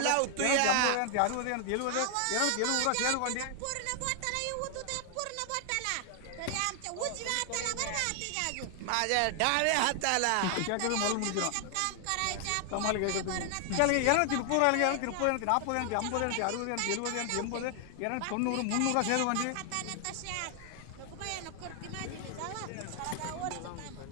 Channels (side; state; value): both; different; correlation 0.00